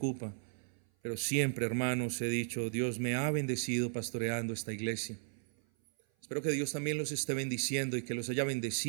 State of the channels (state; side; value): silent; left; 54 dB below the other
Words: Pero siempre, hermanos, he dicho, Dios me ha bendecido pastoreando esta iglesia. Espero que Dios también los esté bendiciendo y que los haya